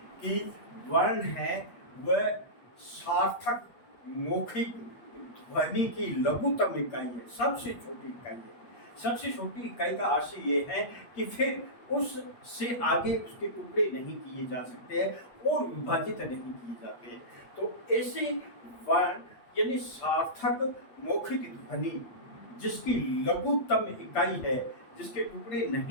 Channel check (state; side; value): late; right; 8.4 ms